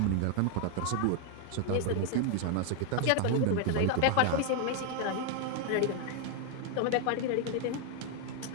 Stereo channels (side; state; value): both; different; correlation 0.00